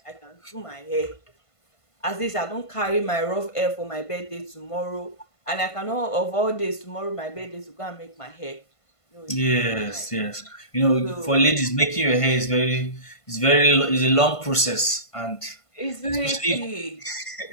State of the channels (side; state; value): right; late; 1.5 ms